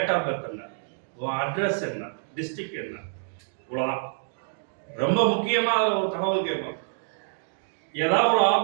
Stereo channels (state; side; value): silent; left; digital silence